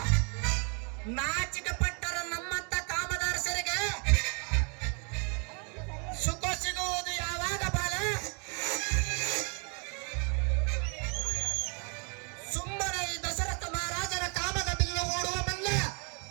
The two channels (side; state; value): left; quieter; 36.7 dB